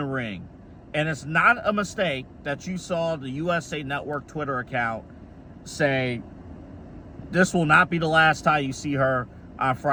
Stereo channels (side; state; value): both; identical; correlation 1.00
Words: ring. And it's not a mistake that you saw the USA Network Twitter account say, this will not be the last time you see her on